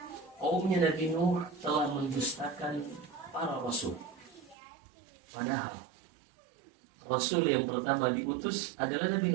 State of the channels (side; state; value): left; drops out; at 4.5 s